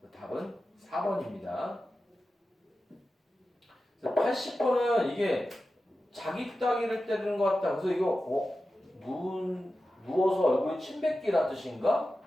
답은 4번입니다. 80번은 이게 자기 따귀를 때리는 것 같다. 그래서 이거 누워서 얼굴에 침 뱉기란 뜻인가?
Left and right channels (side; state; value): both; normal; correlation 0.93